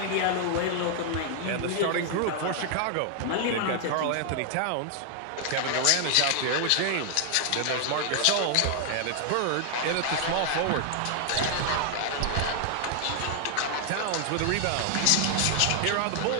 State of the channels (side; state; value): both; different; correlation 0.00